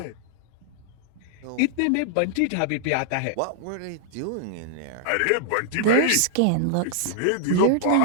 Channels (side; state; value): both; different; correlation -0.01